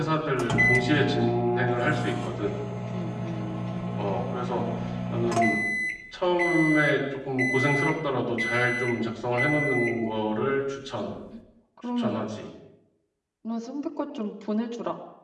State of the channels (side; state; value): both; identical; correlation 1.00